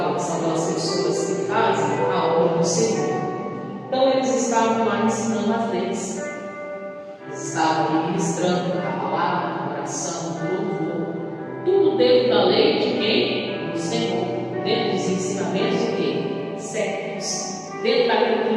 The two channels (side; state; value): both; identical; correlation 1.00